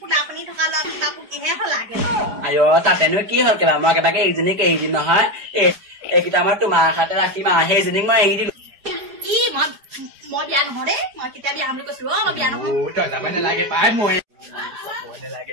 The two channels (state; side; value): late; left; 5.0 ms